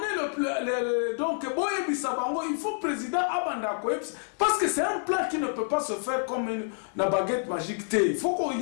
donc, il faut président Abanda Koeps, parce que c'est un plan qui ne peut pas se faire comme une baguette magique. Il faut qu'on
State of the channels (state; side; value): silent; right; 57 dB below the other